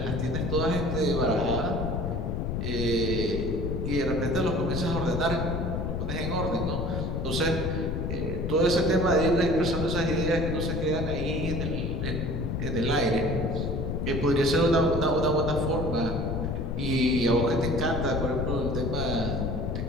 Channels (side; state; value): left; noise; rumble, 1 dB below the sound